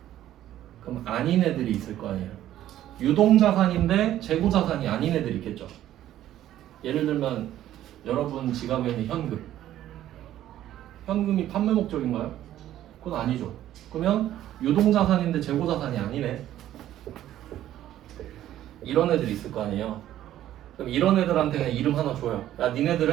그럼 아닌 애들이 있을 거 아니에요. 유동자산인데 재고자산이 아닌 애들이 있겠죠. 예를 들면 여러분 지갑에 있는 현금. 현금이 판매 목적인가요? 그건 아니죠. 그러면 유동자산인데 재고자산이 아니네. 이런 애들이 있을 거 아니에요. 그럼 이런 애들한테 그냥 이름 하나 줘요. 야,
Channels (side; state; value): left; quieter; 12.7 dB